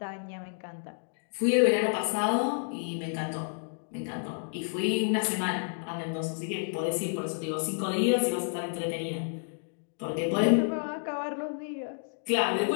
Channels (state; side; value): silent; right; digital silence